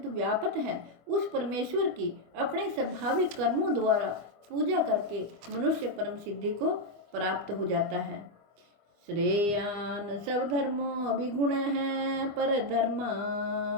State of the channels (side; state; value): left; late; 25 ms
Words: व्यापक है उस परमेश्वर की अपने स्वाभाविक कर्मों द्वारा पूजा करके मनुष्य परम सिद्धि को प्राप्त हो जाता है। श्रेयान सब धर्मों विगुण है पर